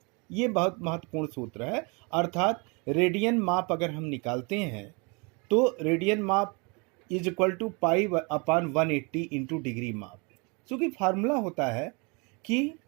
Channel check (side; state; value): left; quieter; 30.9 dB